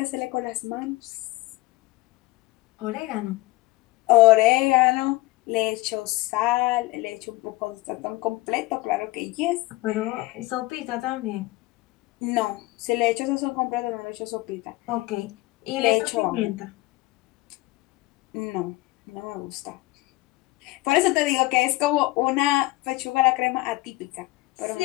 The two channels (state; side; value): quieter; right; 20.1 dB